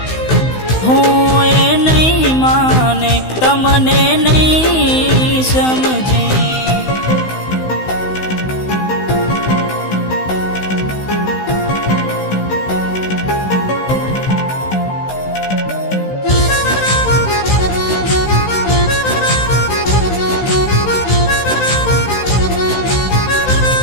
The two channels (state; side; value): late; right; 16 ms